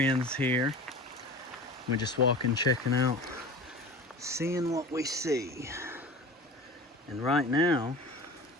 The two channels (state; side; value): normal; both; correlation 0.36